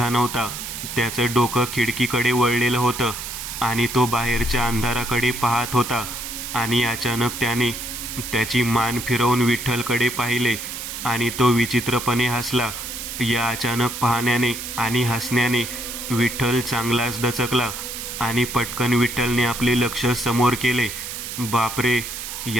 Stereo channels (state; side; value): noise; right; hiss, 7 dB below the sound